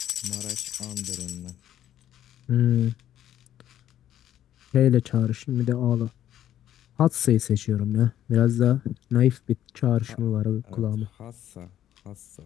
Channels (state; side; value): quieter; right; 11.5 dB